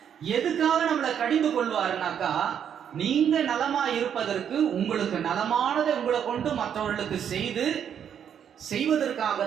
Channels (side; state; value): left; quieter; 8.6 dB